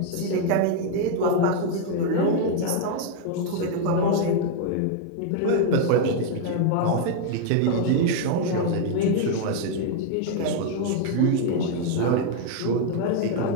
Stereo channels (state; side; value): different; both; correlation 0.00